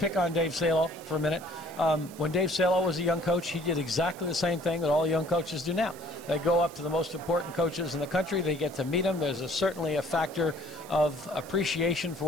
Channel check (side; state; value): right; noise; hiss, 20 dB below the sound